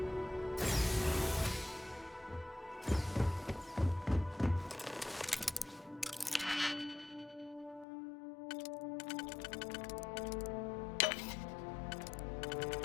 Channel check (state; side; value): drops out; right; at 7.9 s